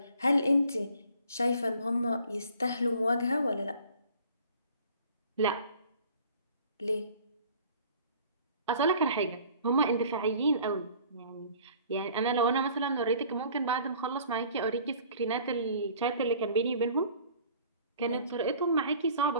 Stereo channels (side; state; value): both; inverted; correlation -0.51